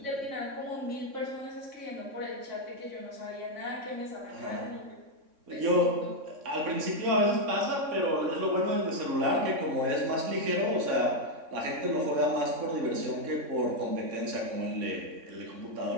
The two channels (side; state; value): left; late; 3.6 ms